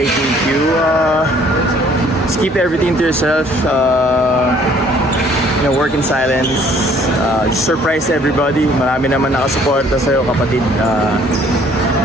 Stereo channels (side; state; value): both; normal; correlation 0.59